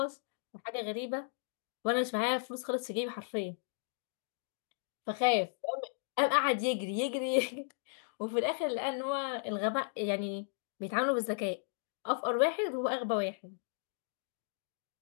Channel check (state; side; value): silent; right; digital silence